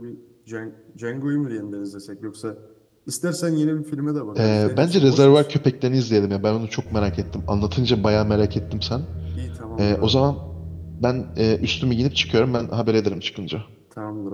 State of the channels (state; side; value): identical; both; correlation 1.00